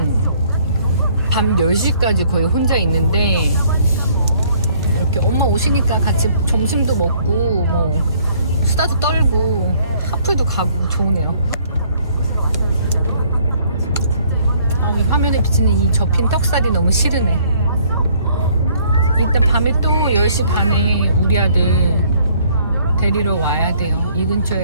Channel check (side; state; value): both; inverted; correlation -0.61